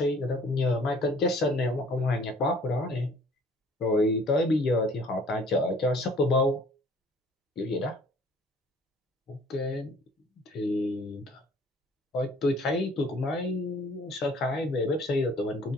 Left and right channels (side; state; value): both; normal; correlation 0.54